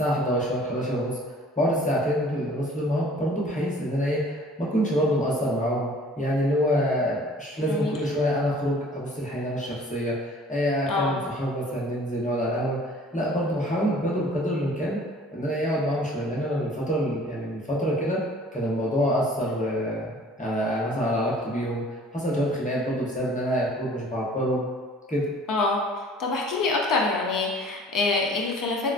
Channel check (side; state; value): both; normal; correlation 0.51